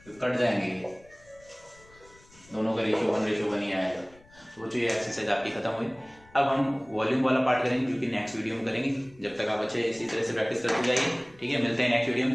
तो कट जाएंगे ये दोनों का रेशो 1:1 ही आएगा। तो बच्चों ये एक्सरसाइज आपकी खत्म हुई। अब हम वॉल्यूम वाला पार्ट करेंगे जो कि नेक्स्ट वीडियो में करेंगे। जब तक आप अच्छे इसी तरह से प्रैक्टिस करते जाइए, ठीक है। मिलते हैं नेक्स्ट वीडियो में,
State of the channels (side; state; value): left; noise; rumble, 27 dB below the sound